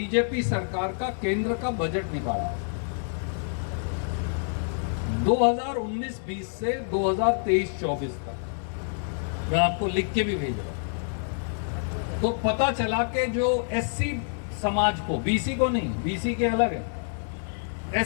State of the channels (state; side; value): silent; right; digital silence